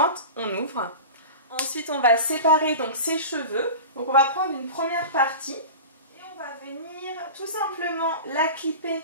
on ouvre. Ensuite on va séparer donc ses cheveux. Donc on va prendre une première partie et on va venir tout simplement la clipper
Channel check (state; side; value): inverted; both; correlation -0.32